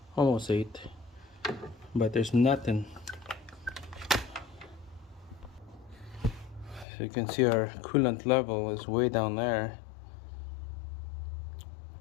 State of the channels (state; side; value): drops out; right; at 6.9 s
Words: 8. But there's nothing. So you can see our coolant level is way down there.